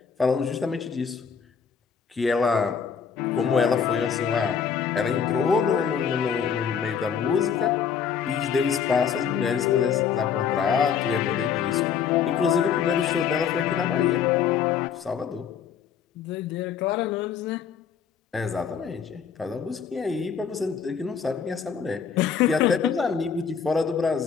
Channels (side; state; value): right; quieter; 7.1 dB